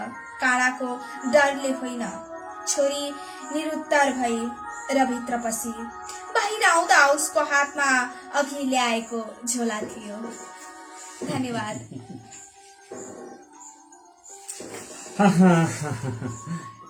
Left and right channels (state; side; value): identical; both; correlation 1.00